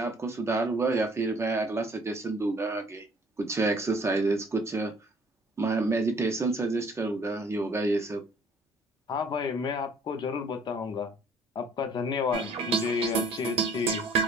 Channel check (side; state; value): both; normal; correlation 0.57